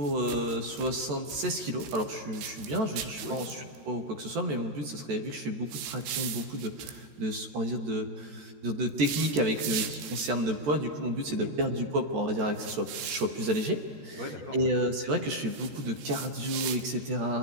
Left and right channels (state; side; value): late; left; 14 ms